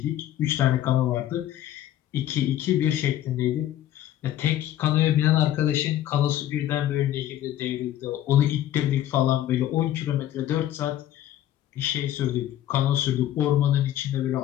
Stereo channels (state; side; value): quieter; right; 12.5 dB